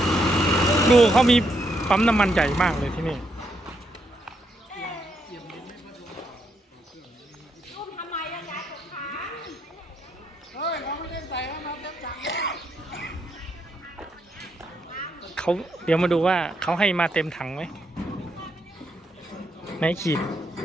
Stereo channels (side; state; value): both; normal; correlation 0.78